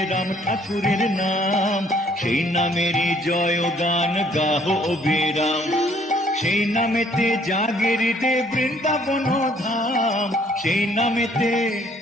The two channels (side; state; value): both; normal; correlation 0.62